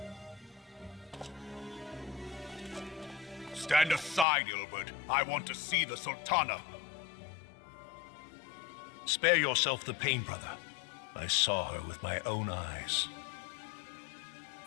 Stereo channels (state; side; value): drops out; right; at 4.2 s